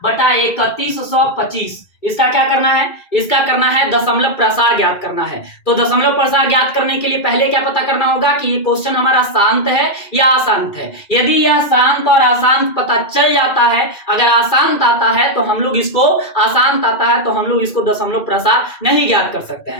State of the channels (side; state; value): right; late; 2.4 ms